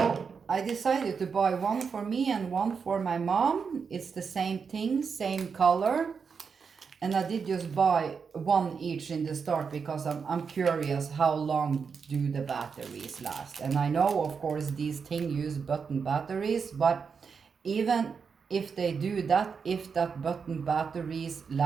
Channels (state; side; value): quieter; left; 5.8 dB